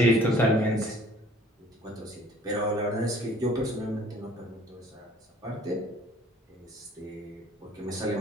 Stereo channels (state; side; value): normal; both; correlation 0.54